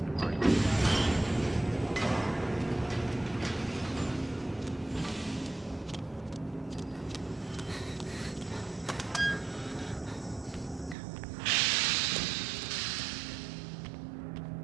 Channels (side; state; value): left; drops out; at 11.0 s